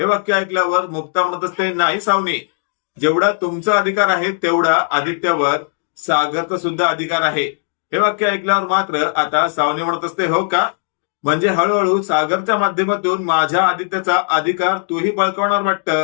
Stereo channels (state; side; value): silent; right; digital silence